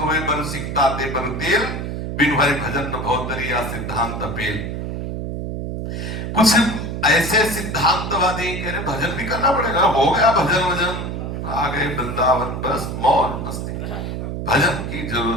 बर सिकता ते बर तेल, बिन हरि भजन न भवतरिया सिद्धांत पेल। कुछ ऐसे सिद्धांतवादी कह रहे भजन भी करना पड़ेगा, हो गया भजन वजन, आ गए वृंदावन, बस मौज मस्ती, भजन की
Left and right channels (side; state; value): right; noise; hum, 5 dB below the sound